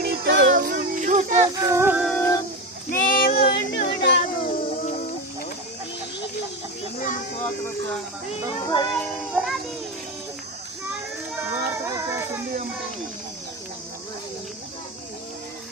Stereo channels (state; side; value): normal; both; correlation 0.19